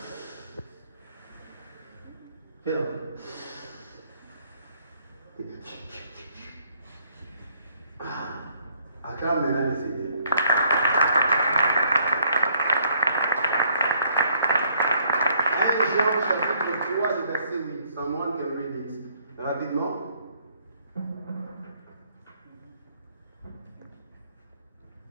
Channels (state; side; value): inverted; both; correlation -0.66